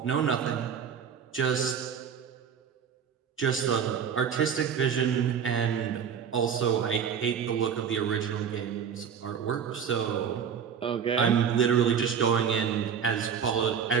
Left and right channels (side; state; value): left; quieter; 7.5 dB